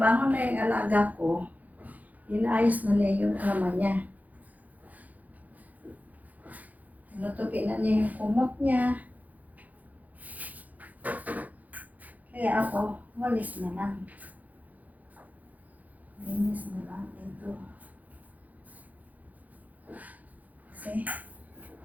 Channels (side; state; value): left; late; 0.079 ms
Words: na yung alaga ko, inaayos na niya yung kama niya. Tinutupin na niya yung kumot niya. Kaya ako, walis na lang. Linis na lang ito. Kasi,